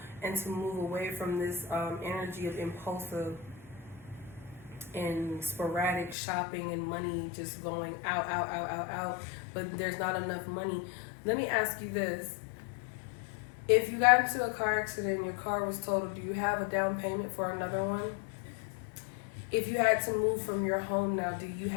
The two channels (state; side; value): drops out; right; at 6.2 s